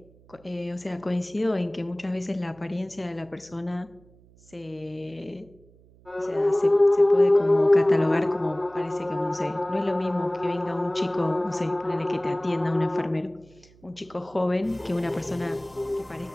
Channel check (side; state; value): right; noise; hum, 27 dB below the sound